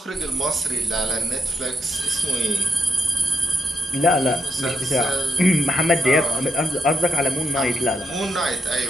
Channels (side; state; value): both; normal; correlation 0.80